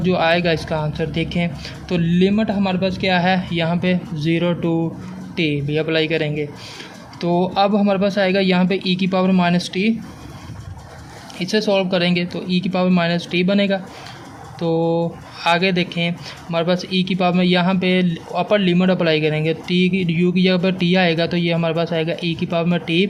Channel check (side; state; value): both; identical; correlation 1.00